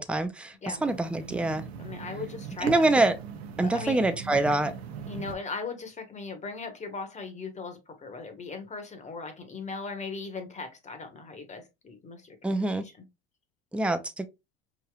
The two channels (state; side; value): normal; both; correlation 0.75